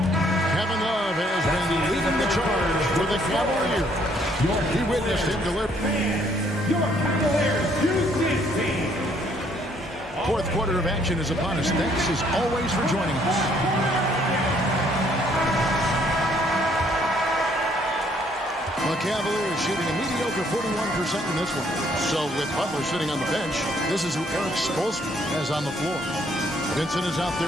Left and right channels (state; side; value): normal; both; correlation 0.66